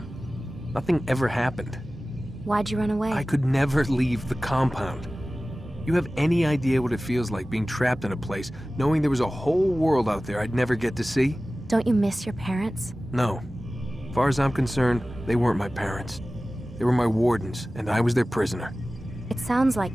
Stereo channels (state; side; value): normal; both; correlation 0.97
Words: Nothing ever happened. Why'd you run away? I could never leave the compound. You have any idea what it feels like being trapped in a place, knowing there was a whole world out there I'd never get to see? Don't you miss your parents? No. As far as I'm concerned, they weren't my parents. They were my wardens, and I was their prisoner. It sounds like